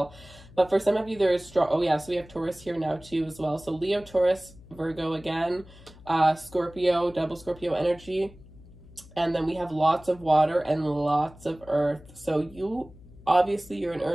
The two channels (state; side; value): noise; left; hum, 21 dB below the sound